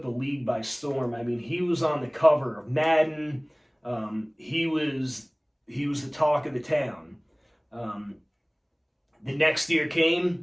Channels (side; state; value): both; identical; correlation 1.00